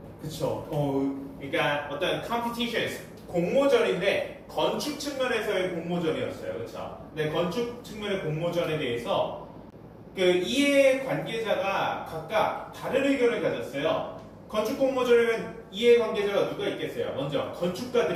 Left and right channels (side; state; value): both; identical; correlation 1.00